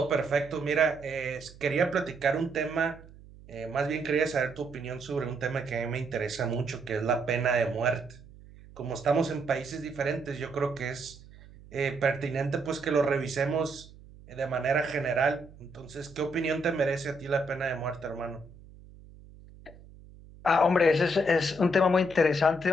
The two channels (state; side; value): noise; right; hum, 21 dB below the sound